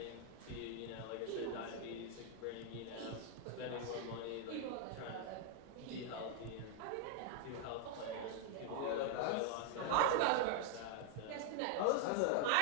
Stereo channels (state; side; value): different; both; correlation 0.00